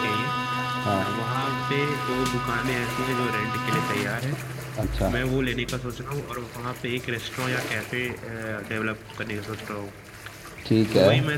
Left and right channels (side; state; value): both; identical; correlation 1.00